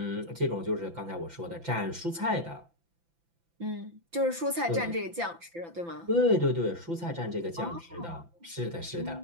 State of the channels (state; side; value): late; left; 5.9 ms